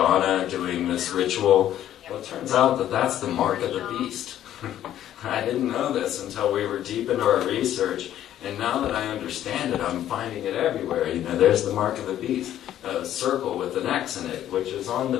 doing this ritual, well, it turns out that that's the mark of the beast. I didn't know this until we were deep into our research, and now that I understand it, I'm finding it everywhere. There's the mark of the beast, a circle with an X in it, which is on the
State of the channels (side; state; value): right; quieter; 11.7 dB